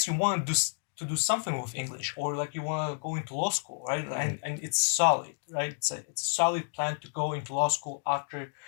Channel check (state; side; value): silent; right; digital silence